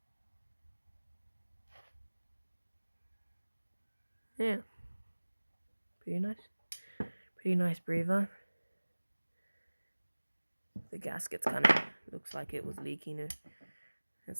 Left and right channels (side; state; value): both; inverted; correlation -1.00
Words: Yeah. Pretty nice. Pretty nice breather. The gasket's kind of looks like it was leaking at